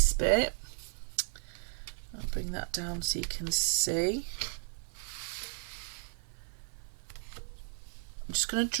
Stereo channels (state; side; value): silent; left; 55 dB below the other